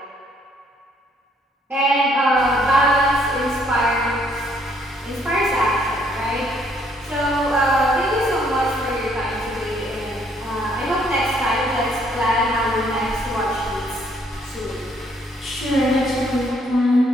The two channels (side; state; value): both; normal; correlation 0.67